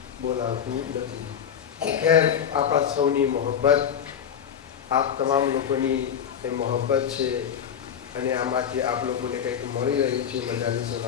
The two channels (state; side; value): quieter; right; 8.4 dB